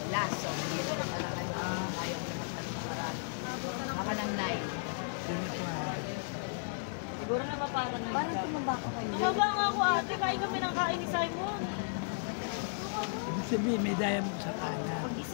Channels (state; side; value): silent; right; 55 dB below the other